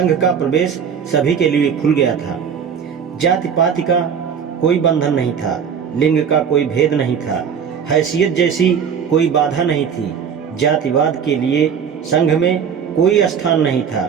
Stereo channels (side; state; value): left; quieter; 7.3 dB